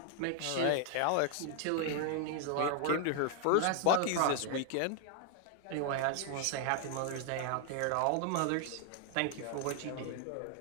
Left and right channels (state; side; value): different; both; correlation 0.00